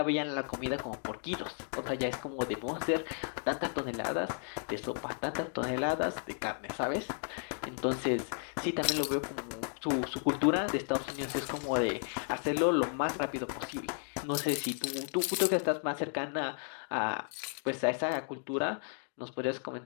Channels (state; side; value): silent; right; 55 dB below the other